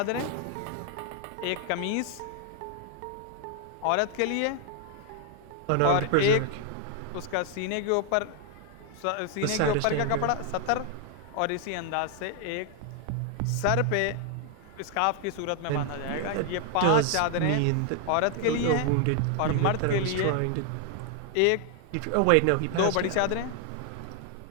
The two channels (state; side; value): different; both; correlation 0.00